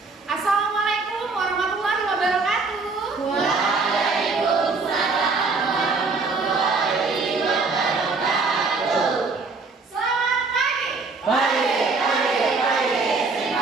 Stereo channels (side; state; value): left; quieter; 4.1 dB